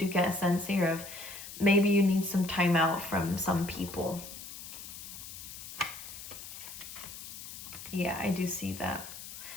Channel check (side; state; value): left; noise; hiss, 12 dB below the sound